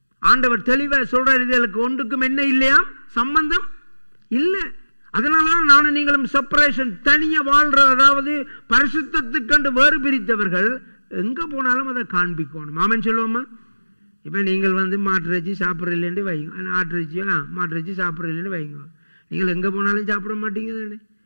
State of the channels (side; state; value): both; inverted; correlation -1.00